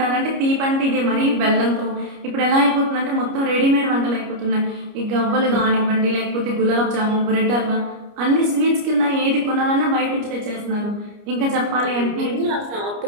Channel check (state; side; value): late; left; 29 ms